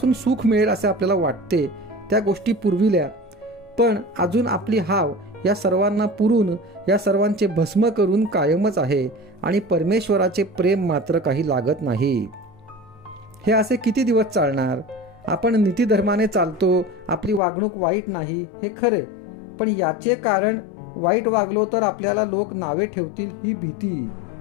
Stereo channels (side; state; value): right; drops out; at 17.4 s